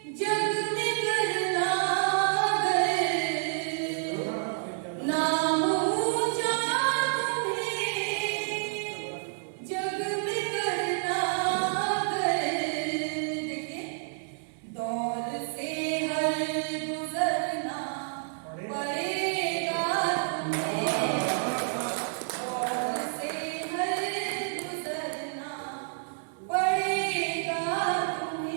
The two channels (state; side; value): silent; left; 58 dB below the other